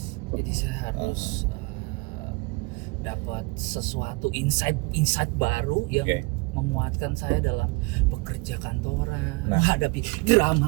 Jadi saya harus dapat sesuatu insight baru yang Oke. memuatkan saya dalam bekerja kantoran, Nah. menghadapi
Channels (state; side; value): quieter; left; 25.3 dB